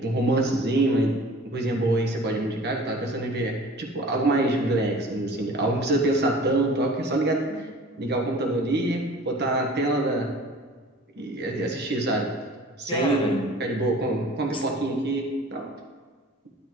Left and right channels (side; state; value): both; normal; correlation 0.45